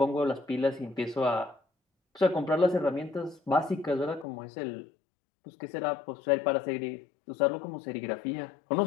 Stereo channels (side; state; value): right; drops out; at 4.2 s